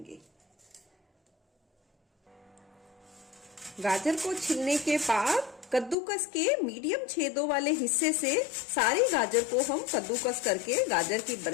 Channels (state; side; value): drops out; right; at 6.0 s